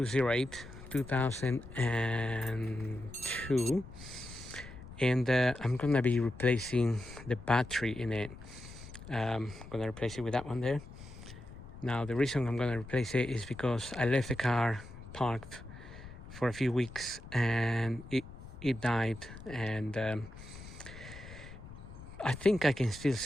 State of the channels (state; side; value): noise; left; rumble, 15 dB below the sound